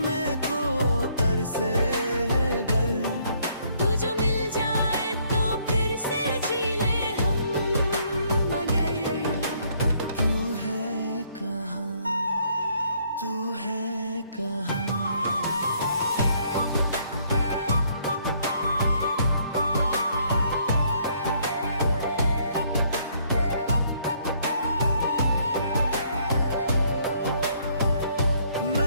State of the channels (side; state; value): both; inverted; correlation -0.66